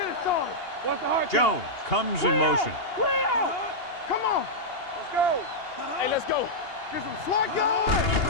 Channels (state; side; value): late; right; 2.8 ms